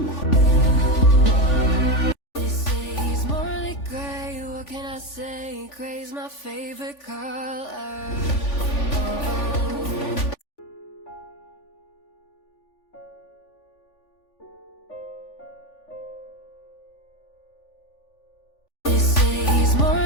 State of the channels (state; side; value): late; right; 3.5 ms